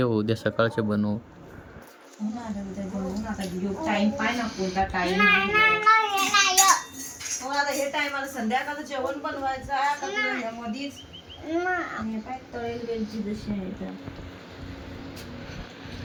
उद्या सकाळचे बनवू. टाइम पाय ना कोणता टाइम. आता हे टायमाला संध्याकाळचं जेवण बनवायचं आहे मधीच. आणि काय तळेल वेलची जशी आहे तर.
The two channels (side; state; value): both; identical; correlation 1.00